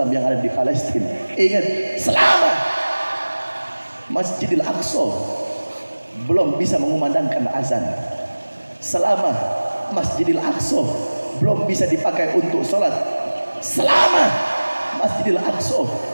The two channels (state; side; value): inverted; both; correlation -1.00